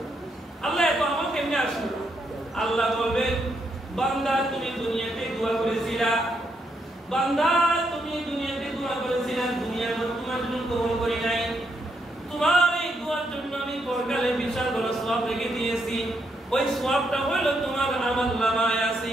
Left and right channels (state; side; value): normal; both; correlation 0.78